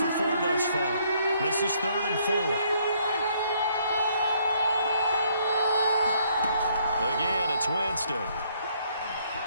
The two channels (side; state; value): both; inverted; correlation -0.67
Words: 4 thus far. This is 3rd and 4. Again, it's Winston.